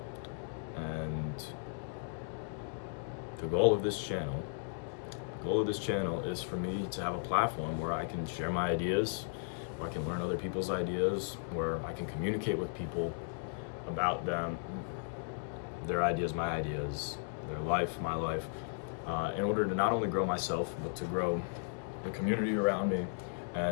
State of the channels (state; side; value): silent; right; digital silence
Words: and the goal of this channel, is for me to have a platform where I can share my ideas, where I can learn other people's ideas, where I can communicate with people about them, their ideas, my ideas, their life, my life, in order to not only grow myself, but to grow the community around me